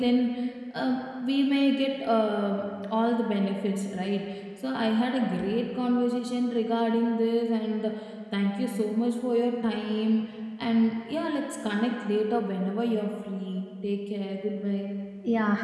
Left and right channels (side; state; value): both; identical; correlation 1.00